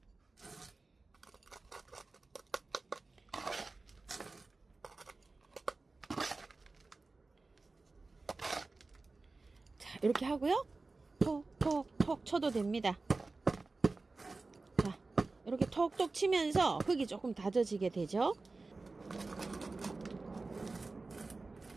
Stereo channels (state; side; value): quieter; left; 3.6 dB